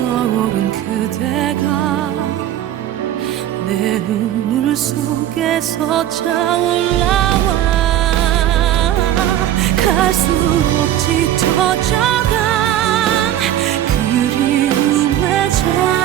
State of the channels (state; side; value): quieter; left; 11.9 dB